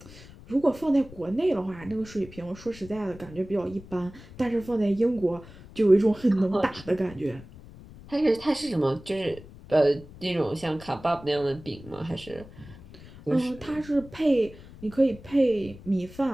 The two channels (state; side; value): noise; left; rumble, 19 dB below the sound